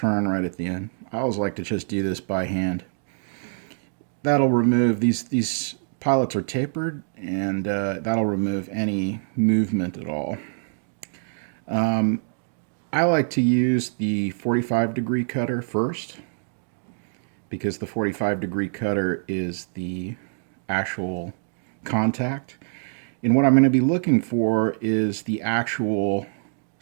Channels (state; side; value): silent; left; 62 dB below the other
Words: right at the end. I always like to just do this by hand. That'll remove, these pilots are tapered, and that'll remove any movement at all. I like to use the 45-degree cutter first, because the 45-degree cutter is the actual contact. And what I'm going to be looking for is the actual